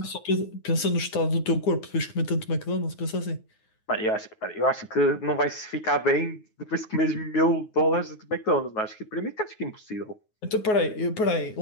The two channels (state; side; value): late; right; 9.4 ms